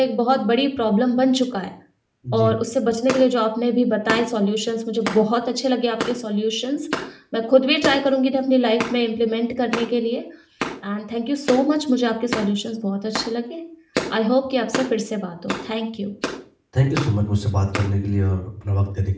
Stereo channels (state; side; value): identical; both; correlation 1.00